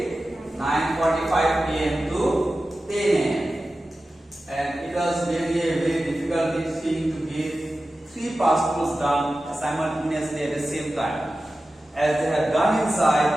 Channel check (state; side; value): normal; both; correlation 0.94